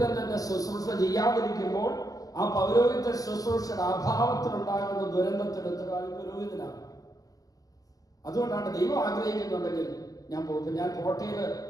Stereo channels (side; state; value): right; late; 0.17 ms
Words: തന്നെ ശുശ്രൂഷ ചെയ്യാതിരിക്കുമ്പോൾ ആ പൗരോഹിത ശുശ്രൂഷയുടെ അഭാവത്തിലുണ്ടാകുന്ന ദുരന്തത്തിന് ഉത്തരവാദി പുരോഹിതനാണ്. അതുകൊണ്ടാണ് ദൈവം ആഗ്രഹിക്കുന്നുണ്ടെങ്കിൽ ഞാൻ പോകും. ഞാൻ കോട്ടയിൽ